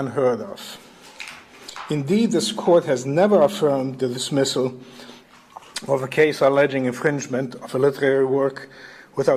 of. Indeed, this court has never affirmed the dismissal of a case alleging infringement of a literary work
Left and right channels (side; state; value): both; identical; correlation 1.00